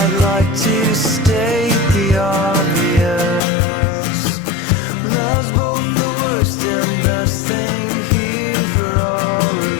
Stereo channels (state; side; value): drops out; right; at 3.4 s